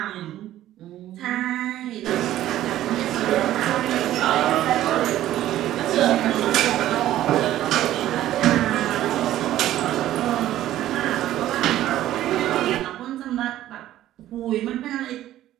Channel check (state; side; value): quieter; left; 13.4 dB